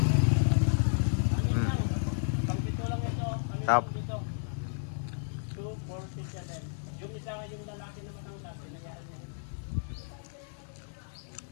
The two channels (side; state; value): right; silent; digital silence